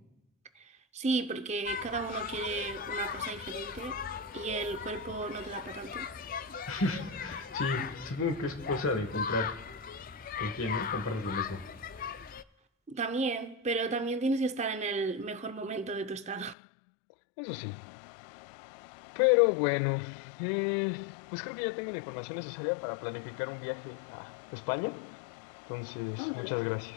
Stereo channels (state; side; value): drops out; right; at 16.6 s